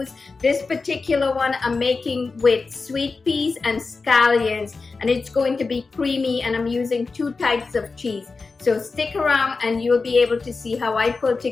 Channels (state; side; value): quieter; right; 4.2 dB